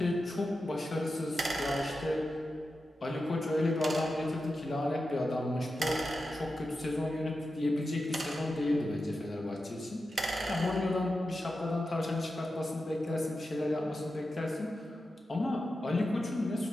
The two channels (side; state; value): both; normal; correlation 0.91